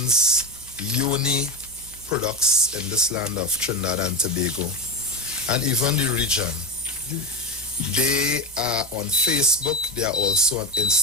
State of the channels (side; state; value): both; normal; correlation 0.17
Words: uni products in this land of Trinidad and Tobago and even the region. They are on Facebook. They are also on